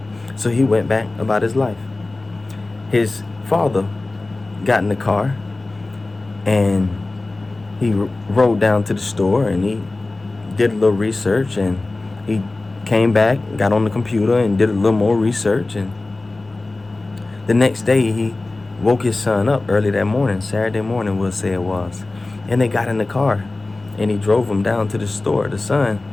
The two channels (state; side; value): quieter; right; 3.1 dB